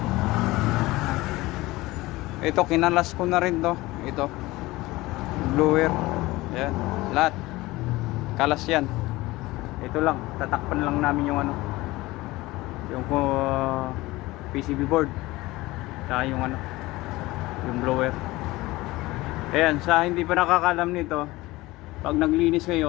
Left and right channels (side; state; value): right; quieter; 19.6 dB